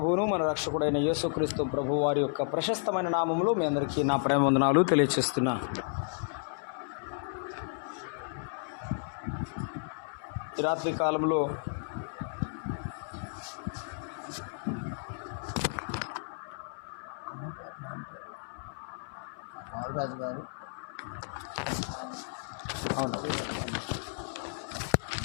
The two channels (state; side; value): silent; right; 56 dB below the other